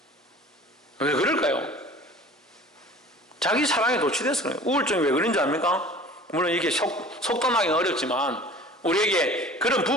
왜 그럴까요? 자기 사랑에 도취돼서 그래요. 우울증이 왜 그런지 압니까? 물론 이렇게 속단하기는 어렵지만 우리에게 그런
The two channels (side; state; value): both; normal; correlation 0.44